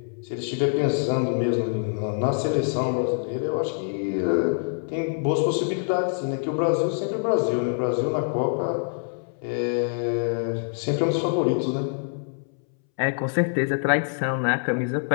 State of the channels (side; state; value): right; silent; 62 dB below the other